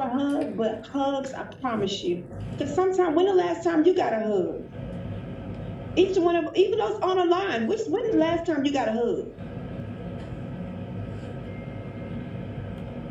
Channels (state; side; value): identical; both; correlation 1.00